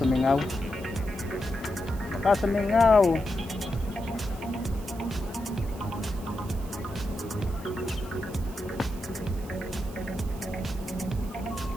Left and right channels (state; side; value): noise; right; hiss, 20 dB below the sound